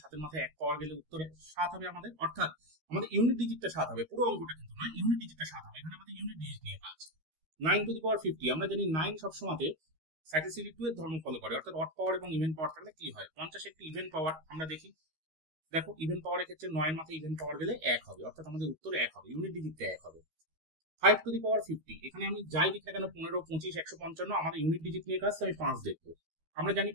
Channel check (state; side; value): late; left; 13 ms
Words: 7-এর মাথায় 1 পাওয়ার গেলে উত্তরে 7 হবে আমাদের, অর্থাৎ আমাদের ইউনিট ডিজিটটা 7 হবে। পুরো অঙ্কটা কিন্তু নয়, ইউনিট ডিজিটটা 7 হবে। এখানে আমাদের ইউনিট ডিজিট নিয়ে কাজ। 9^50, আমরা জানি 9 সবসময় সাইক্লিসিটি 2 এর ধর্ম ফলো করে, অর্থাৎ অড পাওয়ার এবং ইভেন পাওয়ার থাকলে কি হয়? 50 একটি ইভেন পাওয়ার। আমরা দেখি, দেখো ইভেন পাওয়ারের ক্ষেত্রে 9 এর মাথায় ইভেন পাওয়ার গেলে 1 হবে, অর্থাৎ আমাদের উত্তর 1 হবে, ইউনিট ডিজিটটা 1 হবে। 5^50, এখানে আমি যাই লিখি না কেন 15, 25, 155, আমাদের ইউনিট ডিজিট নিয়ে কাজ, আমি 5 দেখবো। আমরা জানি